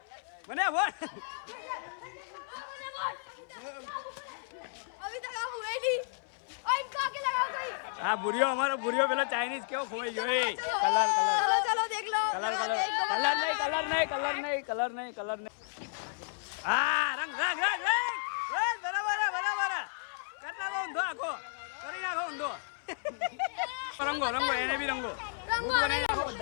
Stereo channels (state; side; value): silent; right; 56 dB below the other